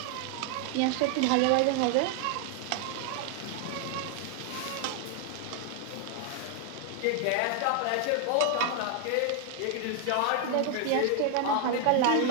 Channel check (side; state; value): both; different; correlation 0.00